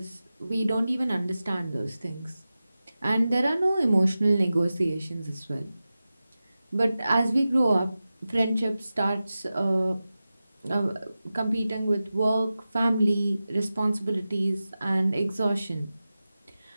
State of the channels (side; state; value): both; inverted; correlation -0.94